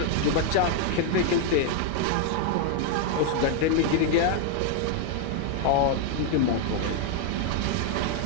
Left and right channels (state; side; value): different; both; correlation 0.00